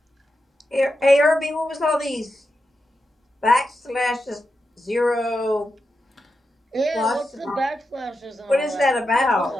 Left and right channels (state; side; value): normal; both; correlation 0.88